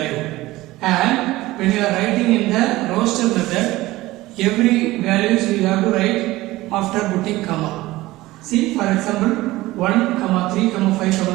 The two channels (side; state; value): left; quieter; 18.2 dB